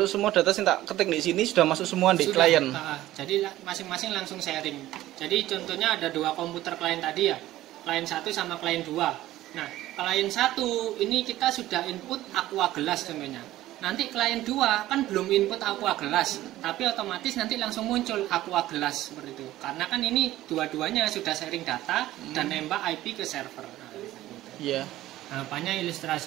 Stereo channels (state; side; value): quieter; left; 15.1 dB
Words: Semua data yang tak ketik di sini sudah masuk semua di sudah, klien. Jadi masing-masing langsung sharing. Jadi contohnya ada 2 komputer klien tadi ya, klien 1 sama klien 2. Nah, klien 1 ini kita sudah input Aqua Gelas contohnya. Nanti klien 2 kan belum input Aqua Gelas, tapi otomatis nanti langsung muncul Aqua Gelas seperti itu. Karena kan ini dua-duanya sudah sharing data dan nembak IP ke server. Iya. Nah, apanya